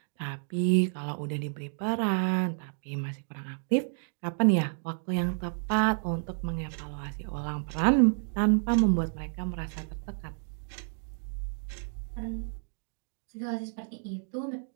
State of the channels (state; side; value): silent; left; digital silence